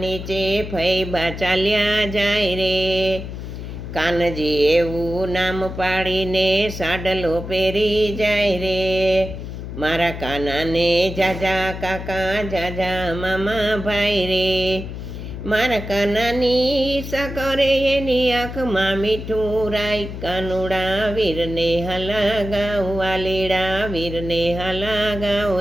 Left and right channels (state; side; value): noise; left; hum, 8 dB below the sound